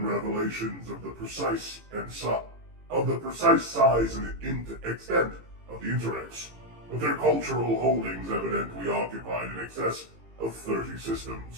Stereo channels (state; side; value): late; left; 18 ms